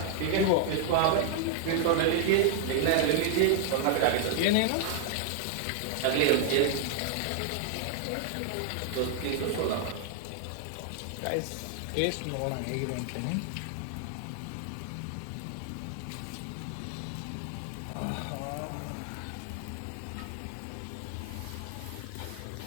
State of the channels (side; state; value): both; different; correlation 0.00